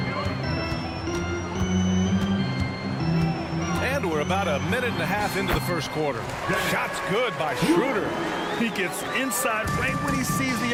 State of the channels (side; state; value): both; identical; correlation 1.00